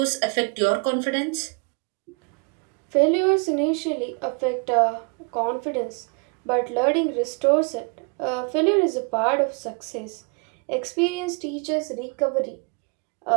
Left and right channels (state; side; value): quieter; left; 35.4 dB